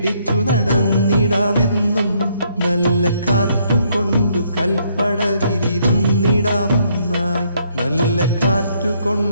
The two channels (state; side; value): inverted; both; correlation -0.70